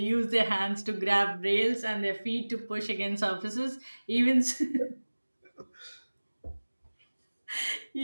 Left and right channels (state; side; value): inverted; both; correlation -1.00